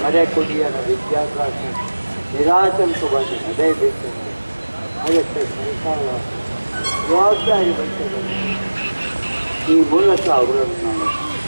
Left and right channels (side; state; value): both; inverted; correlation -1.00